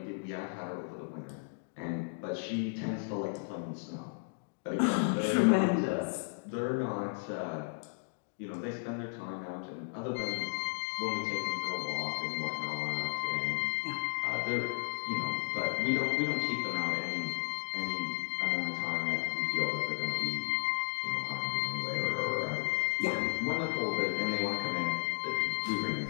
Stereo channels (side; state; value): right; silent; digital silence